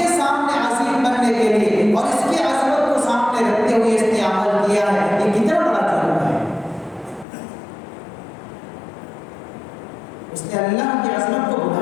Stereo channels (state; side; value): drops out; right; at 7.2 s